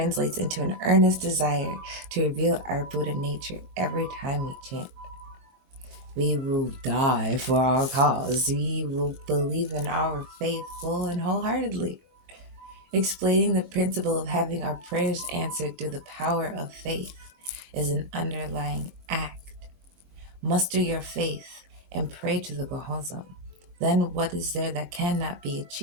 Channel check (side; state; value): left; late; 23 ms